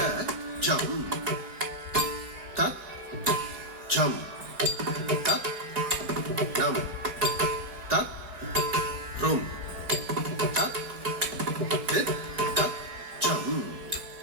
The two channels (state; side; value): late; left; 4.8 ms